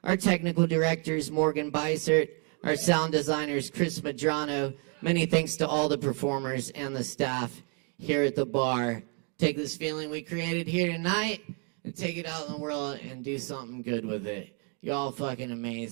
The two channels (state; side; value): quieter; left; 38.4 dB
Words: Our technical director is Morgan Beissert. Our sound designer is Chris Madrano. Many thanks to all the performers and the staff here at the bar. Take this feeling we created here tonight and take it out in the world and do something good with it. Y'all fucking